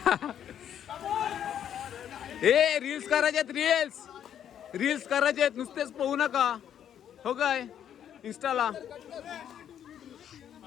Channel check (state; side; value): quieter; right; 9.6 dB